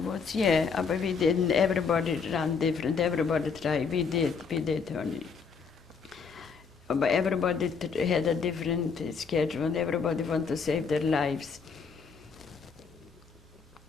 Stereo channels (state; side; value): quieter; right; 5.6 dB